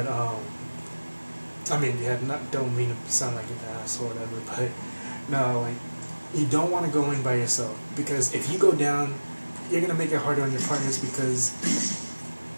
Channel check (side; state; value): both; inverted; correlation -1.00